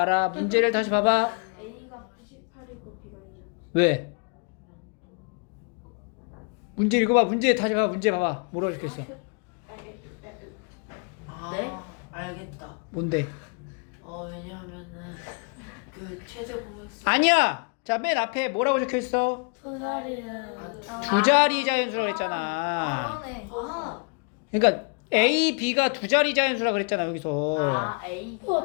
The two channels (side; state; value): right; quieter; 37.2 dB